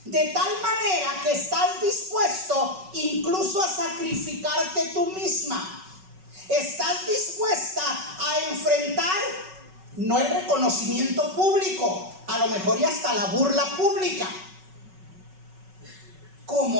De tal manera que estás dispuesto incluso a sacrificarte tú misma. Estás dispuesta a enfrentar no el reconocimiento público, a lo mejor y hasta la burla pública.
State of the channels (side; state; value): left; late; 5.3 ms